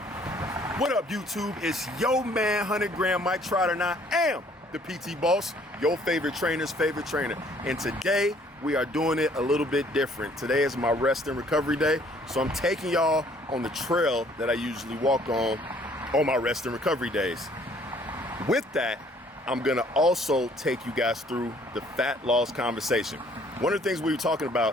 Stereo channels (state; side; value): normal; both; correlation 0.60